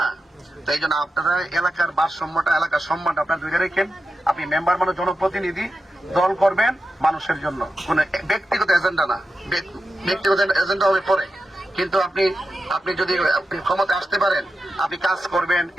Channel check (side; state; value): both; normal; correlation 0.90